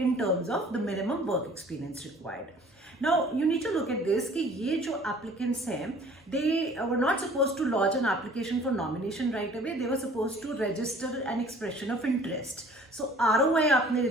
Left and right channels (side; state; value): both; normal; correlation 0.52